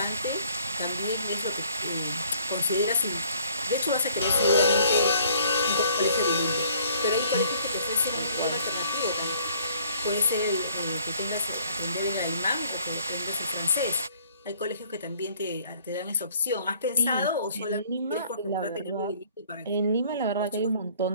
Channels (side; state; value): both; inverted; correlation -0.59